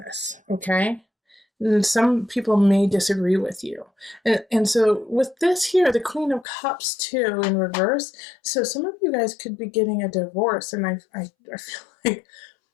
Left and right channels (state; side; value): drops out; right; at 6.5 s